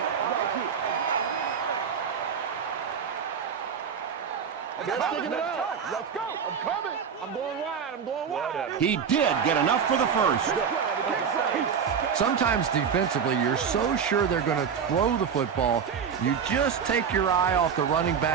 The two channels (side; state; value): left; quieter; 7.0 dB